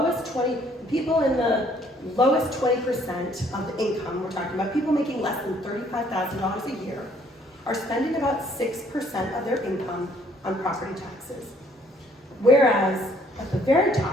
people in the lowest 20% of the income, we're talking about people making less than $35,000 a year, are spending about 6% of their income on property taxes. Whereas at the very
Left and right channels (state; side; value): normal; both; correlation 0.63